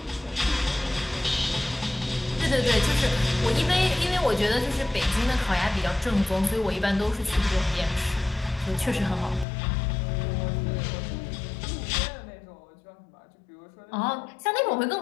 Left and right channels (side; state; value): right; drops out; at 9.5 s